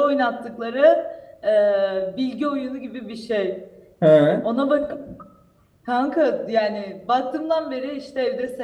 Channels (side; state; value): both; identical; correlation 1.00